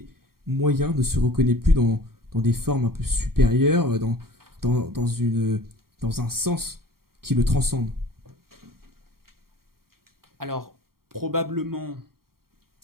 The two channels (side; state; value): left; late; 0.93 ms